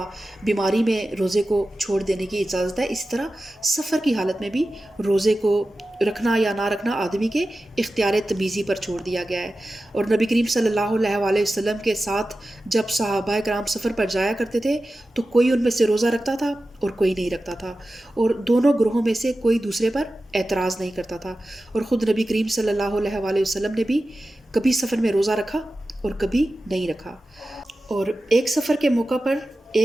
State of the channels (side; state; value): both; normal; correlation 0.94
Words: بیماری میں روزے کو چھوڑ دینے کی اجازت ہے، اسی طرح سفر کی حالت میں بھی روزے کو رکھنا یا نہ رکھنا آدمی کے اختیار تمیزی پر چھوڑ دیا گیا ہے۔ اور نبی کریم صلی اللہ علیہ وآلہ وسلم کے ساتھ جب صحابہ کرام سفر پر جایا کرتے تھے تو کوئی ان میں سے روزہ رکھتا تھا اور کوئی نہیں رکھتا تھا، اور دونوں گروہوں میں سے کوئی دوسرے پر اعتراض نہیں کرتا تھا۔ اور خود نبی کریم صلی اللہ علیہ وآلہ وسلم نے بھی کبھی سفر میں روزہ رکھا اور کبھی نہیں رکھا۔ اور ایک سفر کے موقع پر